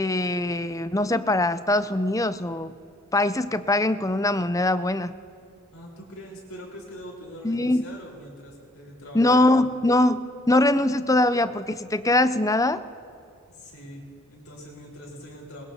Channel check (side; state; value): both; normal; correlation 0.64